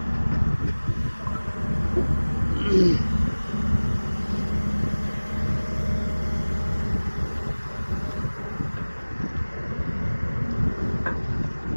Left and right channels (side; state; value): both; inverted; correlation -1.00